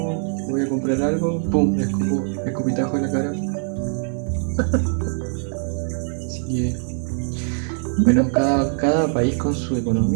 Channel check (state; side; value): silent; left; 57 dB below the other